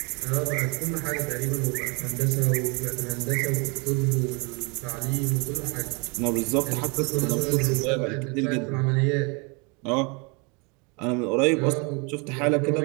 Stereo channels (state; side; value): quieter; left; 31.4 dB